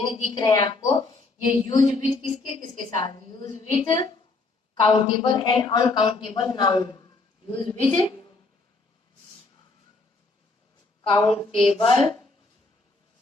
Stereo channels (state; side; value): quieter; right; 3.5 dB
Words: दिख रहे हैं आपको, ये यूज विथ किसके किसके साथ, use with countable and uncountable noun, use with countable